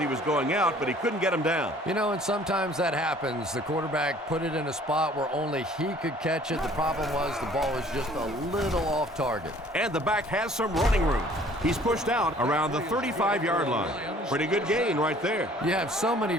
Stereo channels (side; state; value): both; normal; correlation 0.54